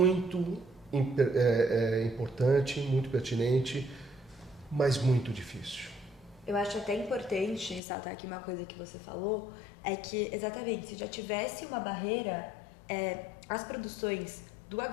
importante, muito pertinente, mas muito difícil. Eu acho até importante ressaltar aqui uma coisa que você falou, é que exatamente, se já tivesse uma barreira, as produções do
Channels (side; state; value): right; drops out; at 7.8 s